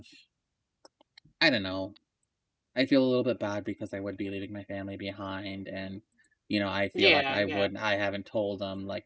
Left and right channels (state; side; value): identical; both; correlation 1.00